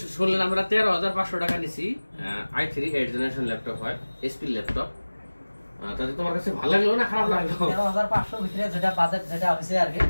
শুনলেন আমরা 13,500 টাকা নিছি। i3 8 জেনারেশন ল্যাপটপ হয়, এসপি ল্যাপটপ। তাতে তোমার কাছে ভালো লাগলো না খারাপ লাগলো? 13,500 ভিতরে যেটা বাজেট যেটা হইছে আর কি,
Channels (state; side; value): inverted; both; correlation -1.00